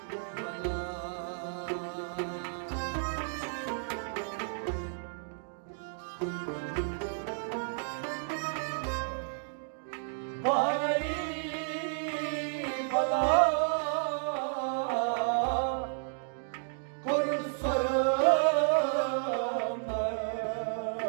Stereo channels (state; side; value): silent; left; digital silence